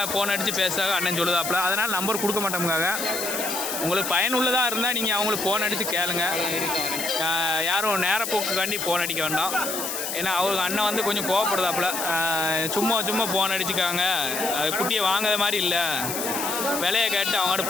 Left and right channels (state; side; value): noise; left; hiss, 4 dB below the sound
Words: ஃபோன் அடித்து பேசுகிறாங்க அண்ணன் சொல்லுதாப்புல. அதனால் நம்பர் கொடுக்க மாட்டோமுக்காக. உங்களுக்கு பயனுள்ளதாக இருந்தால் நீங்கள் அவங்களுக்கு ஃபோன் அடித்து கேளுங்க. யாரும் நேரப்போக்குக்காண்டி ஃபோன் அடிக்க வேண்டாம். ஏன்னா அவங்க அண்ணன் வந்து கொஞ்சம் கோவப்படுதாப்புல. சும்மா ஃபோன் அடிச்சுக்காங்க, அது குட்டியை வாங்காத மாதிரி இல்லை, விலையை கேட்டு அவங்கள்ட்ட